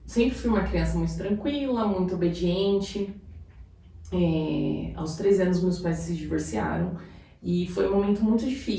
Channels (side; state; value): both; identical; correlation 1.00